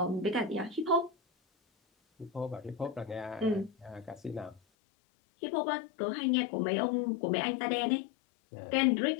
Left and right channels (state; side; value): drops out; right; at 4.6 s